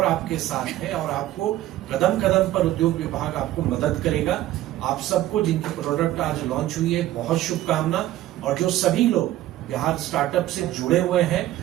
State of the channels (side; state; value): left; quieter; 14.5 dB